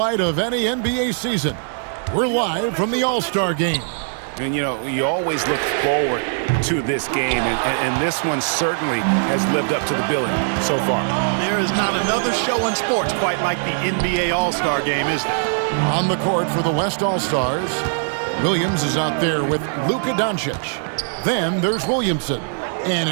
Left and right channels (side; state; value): left; silent; digital silence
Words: of any NBA season. We're live from the All-Star Game. And, you know, you always look forward to this game, and this one certainly has lived up to the billing so far. There is not another show in sports quite like the NBA All-Star Game, is there? On the court for the West All-Stars, Williams is out there with Luka Doncic. Then there's Williamson. And